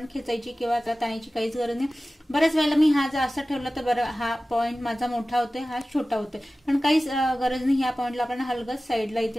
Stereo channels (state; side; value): normal; both; correlation 0.96